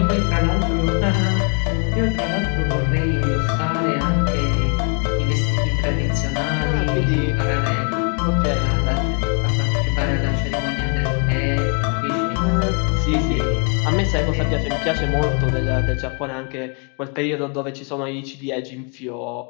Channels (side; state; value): right; quieter; 39.0 dB